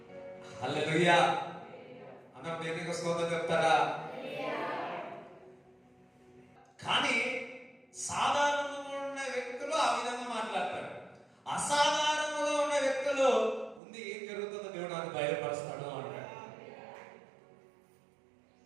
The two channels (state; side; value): drops out; left; at 13.8 s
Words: హల్లెలూయా. అన్నం దేవునికి స్తోత్రం చెప్తారా? కానీ సాధారణంగా ఉన్న వ్యక్తులు ఆ విధంగా మాట్లాడతారు, అసాధారణంగా ఉన్న వ్యక్తులు ముందు ఏం జరుగుతుందో దేవుడు నాకు బయలుపరుస్తాడు అంటాడు.